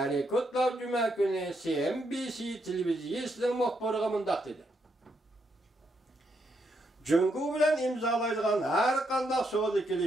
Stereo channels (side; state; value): both; normal; correlation 0.78